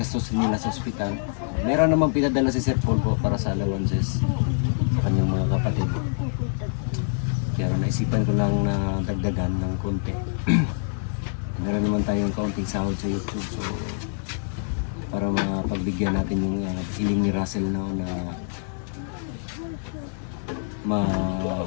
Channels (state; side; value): silent; right; digital silence